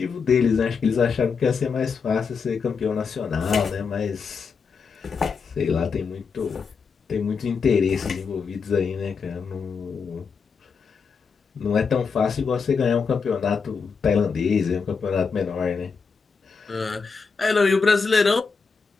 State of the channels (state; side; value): quieter; right; 5.4 dB